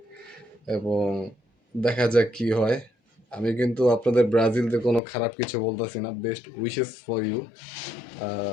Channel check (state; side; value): drops out; right; at 5.0 s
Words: এবং দেখা যাক কি হয়। আমি কিন্তু আপনাদের ব্রাজিলদের কোনো খারাপ কিছু বলতেছি না, বেস্ট উইশেস ফর ইউ।